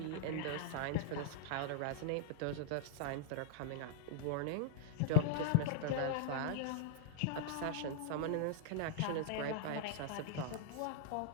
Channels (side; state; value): both; different; correlation -0.01